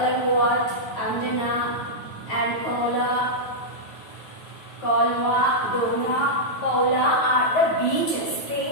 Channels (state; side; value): late; right; 9.4 ms